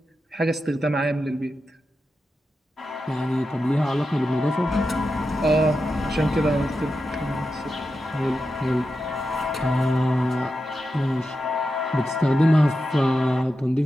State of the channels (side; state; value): both; normal; correlation 0.89